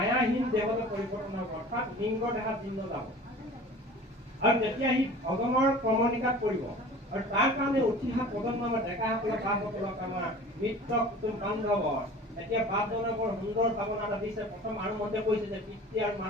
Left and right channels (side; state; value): both; normal; correlation 0.42